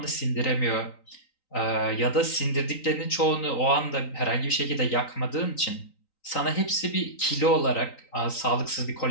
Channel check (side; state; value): right; late; 3.9 ms